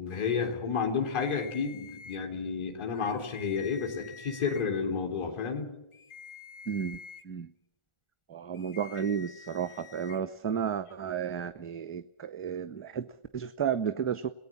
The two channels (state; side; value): late; right; 1.4 ms